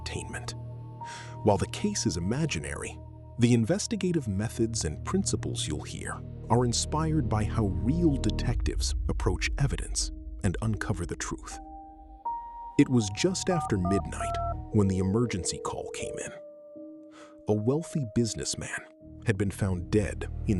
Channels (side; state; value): both; identical; correlation 1.00